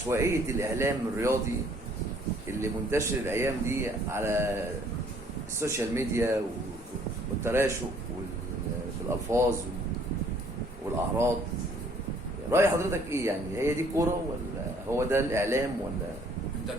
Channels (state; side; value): normal; both; correlation 0.60